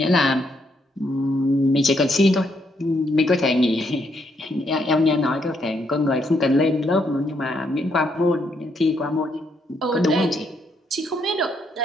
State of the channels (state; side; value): normal; both; correlation 0.75